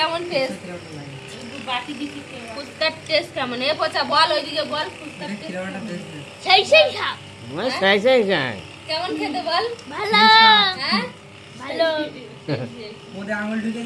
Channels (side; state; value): both; identical; correlation 1.00